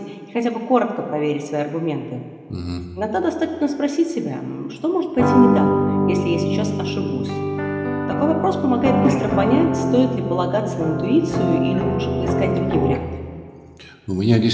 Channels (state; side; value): identical; both; correlation 1.00